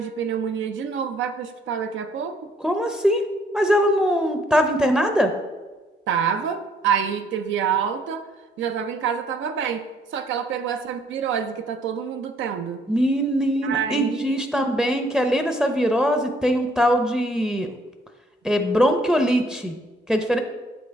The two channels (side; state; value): both; normal; correlation 0.64